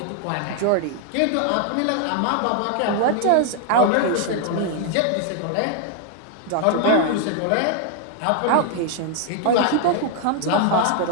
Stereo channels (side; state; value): both; different; correlation 0.00